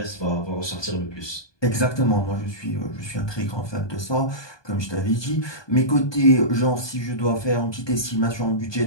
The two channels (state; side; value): late; right; 1.2 ms